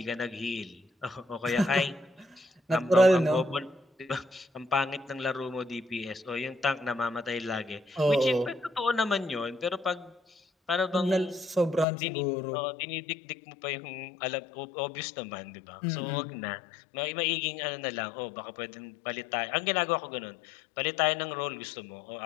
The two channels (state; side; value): drops out; right; at 11.9 s